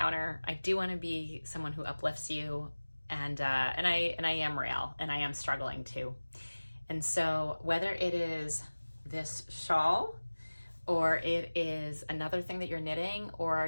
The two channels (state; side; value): inverted; both; correlation -1.00